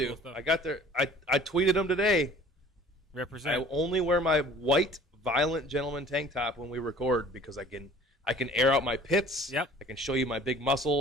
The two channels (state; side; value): normal; both; correlation 0.49